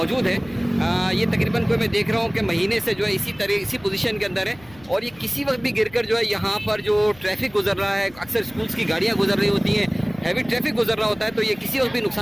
ہے یہ تقریباً کوئی میں دیکھ رہا ہوں کہ مہینے سے جو ہے اسی پوزیشن کے اندر ہے اور یہ کسی وقت بھی گر کر جو ہے یہاں پر جو ٹریفک گزر رہا ہے, اکثر اسکولس کی گاڑیاں گزر رہی ہوتی ہیں, ہیوی ٹریفک گزر رہا ہوتا ہے, تو یہ کسی وقت بھی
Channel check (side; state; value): left; noise; rumble, 23 dB below the sound